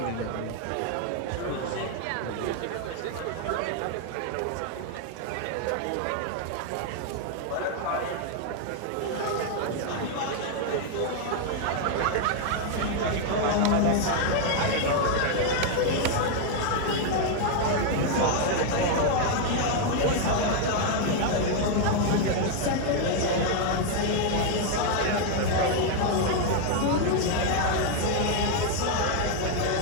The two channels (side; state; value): both; different; correlation 0.00